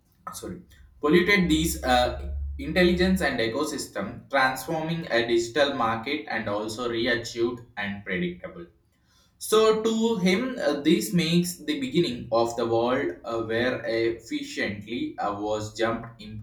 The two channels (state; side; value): identical; both; correlation 1.00